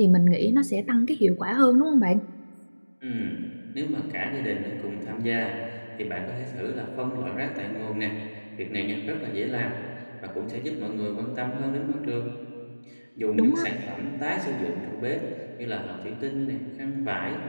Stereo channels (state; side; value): inverted; both; correlation -1.00